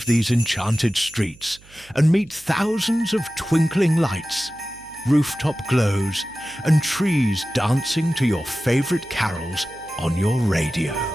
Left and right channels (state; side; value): noise; right; hum, 25 dB below the sound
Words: these enchanted streets and meet thousands of twinkling lights, rooftop glows, and trees dancing to your favorite carols on your radio.